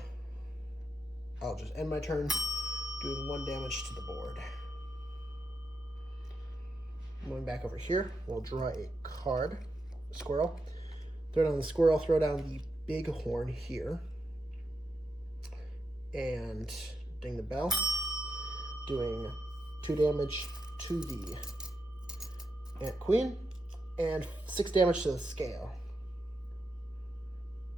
I'll just end my turn doing 1 damage to the board. Going back over here, we'll draw a card, a squirrel. Throw down the squirrel, throw down the bighorn here. And ding the bell, doing 2 damage to the Ant Queen and 6 damage to the scale.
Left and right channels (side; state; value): both; normal; correlation 0.86